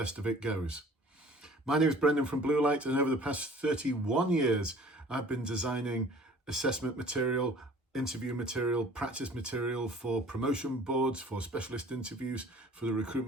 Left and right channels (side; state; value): both; normal; correlation 0.49